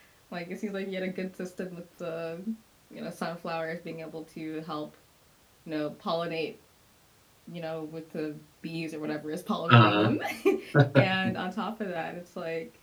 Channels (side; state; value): both; identical; correlation 1.00